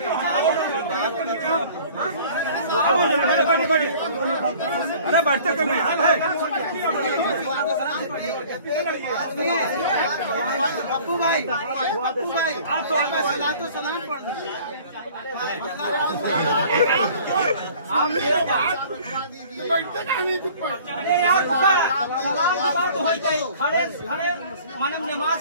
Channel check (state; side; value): inverted; both; correlation -0.49